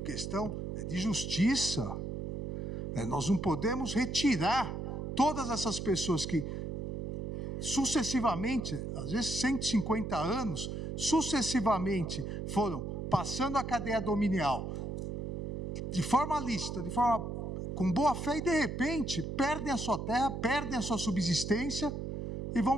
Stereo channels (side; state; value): right; noise; hum, 5 dB below the sound